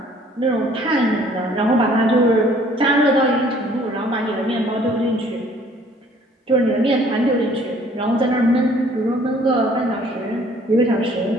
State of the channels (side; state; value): both; normal; correlation 0.57